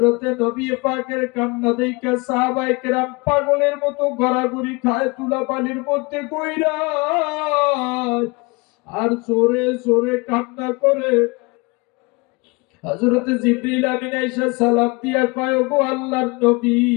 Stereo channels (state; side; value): quieter; right; 27.1 dB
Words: নবী পাকের কান্না দেখে সাহাবায়ে কেরাম পাগলের মতো গড়াগড়ি খায় তুলা পানির মধ্যে কইরা, আর জোরে জোরে কান্না করে। হযরতে জিবরিল আমিন আয়েশা সালাম দিয়া কয়, গো আল্লাহর নবী,